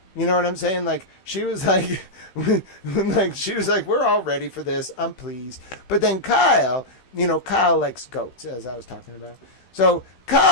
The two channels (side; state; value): right; late; 15 ms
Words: You know what I'm saying? Like, she was like, we're all ready for this. I'm pleased. But then Kyle, you know, Kyle likes goats, as I was talking about. So